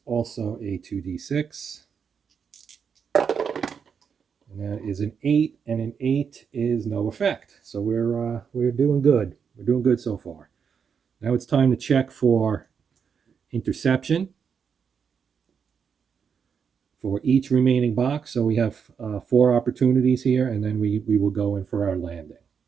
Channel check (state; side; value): quieter; left; 6.7 dB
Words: also a 2d6. And that is an 8, and an 8 is no effect. So we're doing good. We're doing good so far. Now it's time to check for interception for each remaining box. So we have 4 opportunities here, and then we will go in for our landing.